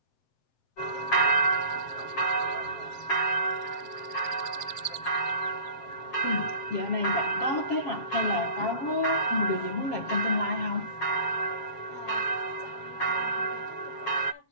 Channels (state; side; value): late; right; 7.4 ms